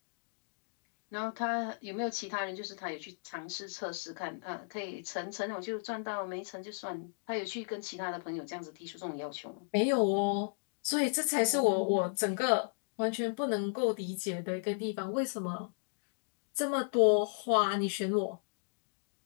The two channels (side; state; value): right; silent; digital silence